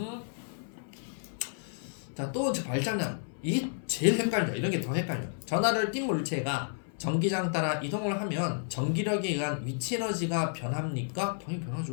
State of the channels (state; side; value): silent; right; 57 dB below the other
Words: 자, 또 발장난. 이게 제일 헷갈려. 이런 게 더 헷갈려. 전하를 띈 물체가 전기장 따라 이동을 하면 전기력에 의한 위치 에너지가 변합니까? 당연히